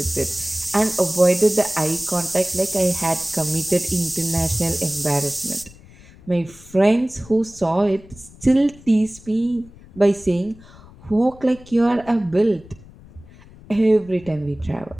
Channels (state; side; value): noise; left; rumble, 22 dB below the sound